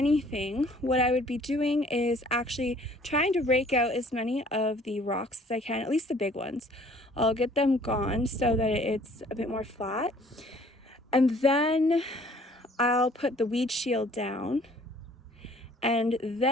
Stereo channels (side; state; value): both; normal; correlation 0.56